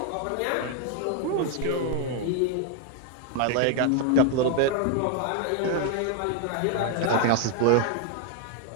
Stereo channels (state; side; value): different; both; correlation 0.00